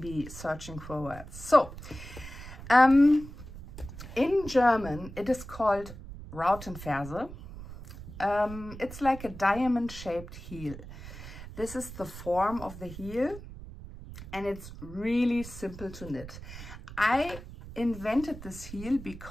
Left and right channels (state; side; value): noise; right; rumble, 13 dB below the sound